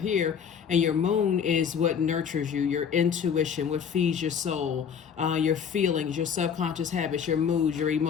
And your moon is what nurtures you, your intuition, what feeds your soul, your feelings, your subconscious habits, your moods, your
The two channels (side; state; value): right; quieter; 7.4 dB